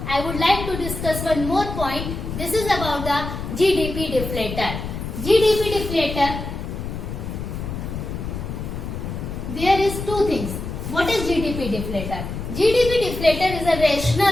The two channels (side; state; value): left; noise; rumble, 6 dB below the sound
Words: I would like to discuss one more point. This is about the GDP deflator. GDP deflator, there is two things. What is GDP deflator? GDP deflator is a